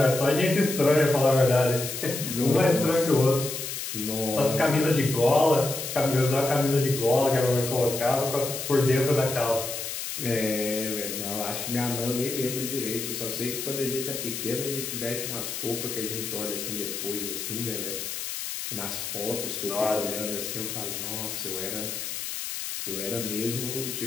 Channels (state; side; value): noise; left; hiss, 5 dB below the sound